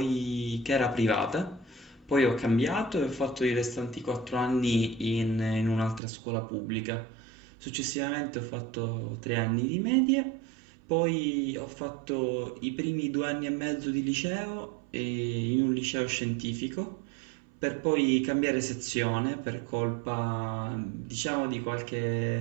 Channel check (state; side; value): drops out; left; at 6.0 s